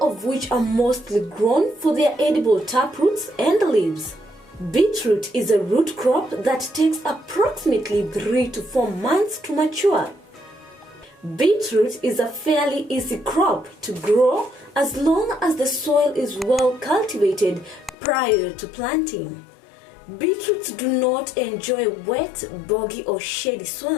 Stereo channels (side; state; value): right; drops out; at 17.9 s